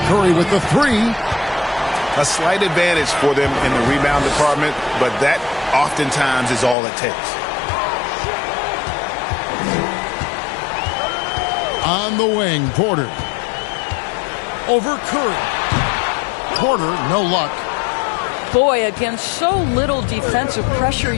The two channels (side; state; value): right; drops out; at 6.8 s